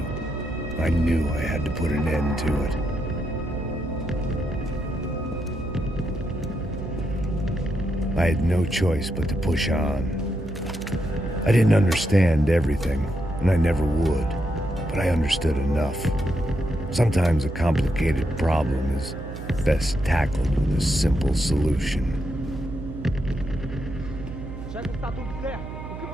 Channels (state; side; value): noise; right; hum, 9 dB below the sound